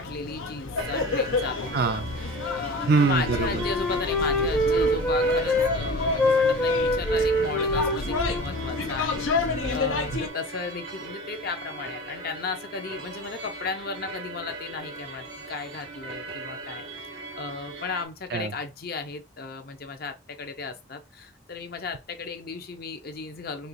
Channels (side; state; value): both; normal; correlation 0.33